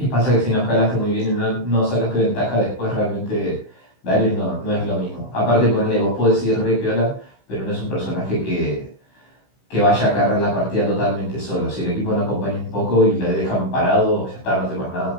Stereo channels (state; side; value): late; right; 15 ms